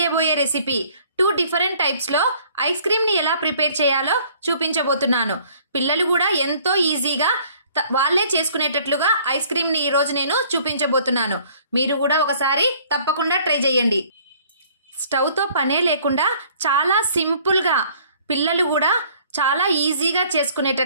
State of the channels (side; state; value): both; inverted; correlation -0.56